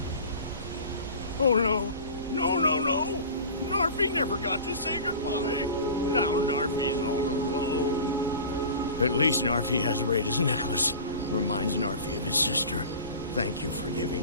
Oh no, no! Narfi never got to say goodbye. Now Narfi's all alone. At least Narfi has Rada's necklace. Reminds Narfi of his sister. Thank you for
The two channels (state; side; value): inverted; both; correlation -0.37